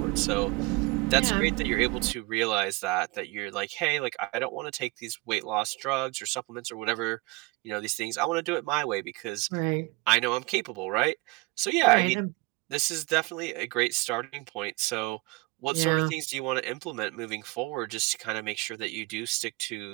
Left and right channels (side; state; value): left; quieter; 24.1 dB